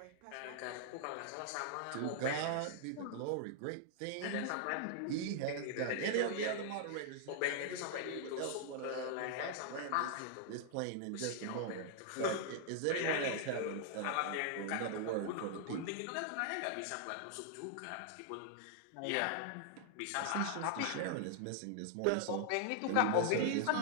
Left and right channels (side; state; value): both; different; correlation 0.00